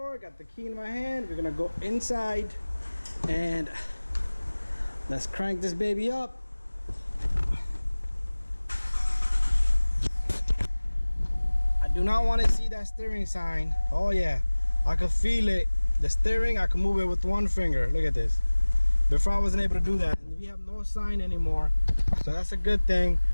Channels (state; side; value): inverted; both; correlation -1.00